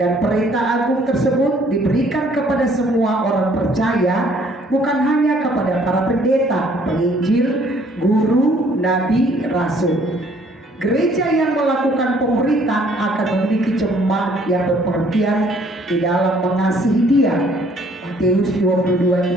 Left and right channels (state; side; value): normal; both; correlation 0.61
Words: perintah agung tersebut diberikan kepada semua orang percaya, bukan hanya kepada para pendeta, penginjil, guru, nabi, rasul. Gereja yang melakukan pemuritan akan memiliki jemaat yang berpengertian di dalam mengasihi Dia. Matius